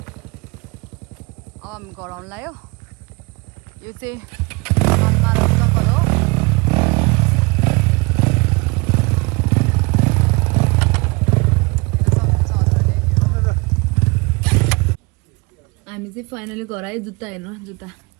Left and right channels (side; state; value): left; quieter; 27.3 dB